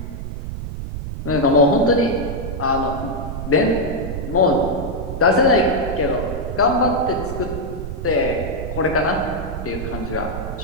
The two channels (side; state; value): right; noise; rumble, 7 dB below the sound